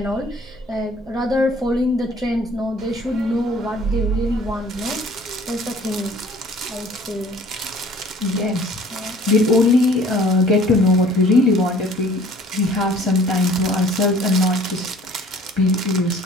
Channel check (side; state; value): both; normal; correlation 0.52